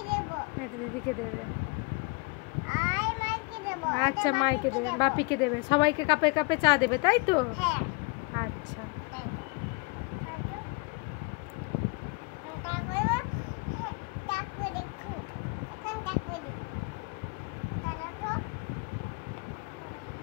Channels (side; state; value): right; quieter; 29.3 dB